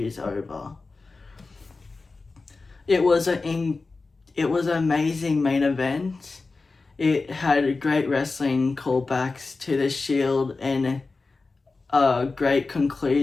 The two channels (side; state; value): right; quieter; 3.8 dB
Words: is over. It was an amazing main event. It had great wrestling callbacks to the Shield and a great